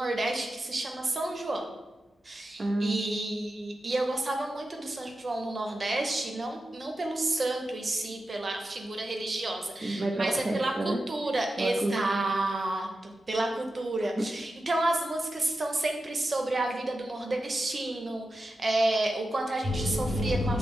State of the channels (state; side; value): normal; both; correlation 0.91